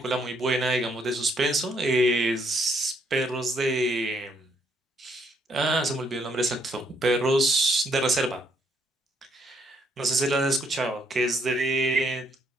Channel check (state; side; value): normal; both; correlation 0.70